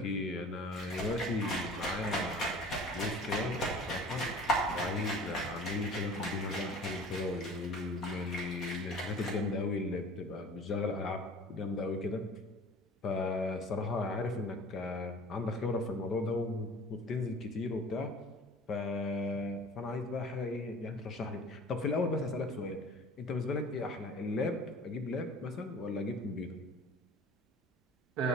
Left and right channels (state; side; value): normal; both; correlation 0.44